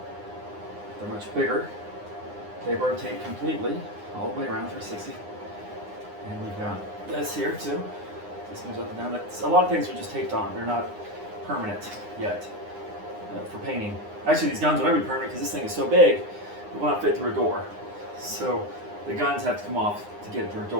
They're much bigger. They rotate completely all the way around 360. And we've got this here too. This moves up and down. A lot of things are just taped on. They're not permanent yet for painting. Actually, these guns will never be permanent because this thing is so big, it will not fit through a door. So the guns have to come off to get it through a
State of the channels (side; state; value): left; late; 9.8 ms